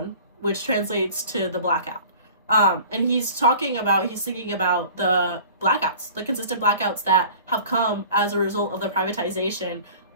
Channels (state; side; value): inverted; both; correlation -0.45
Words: which translates to the blackout. And he's singing about the blackouts, the consistent blackouts that have come as a result of the privatization